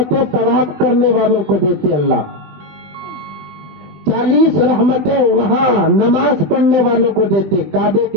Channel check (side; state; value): left; late; 20 ms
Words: طواف کرنے والوں کو دیتے اللہ، 40 رحمتیں وہاں نماز پڑھنے والوں کو دیتے کعبے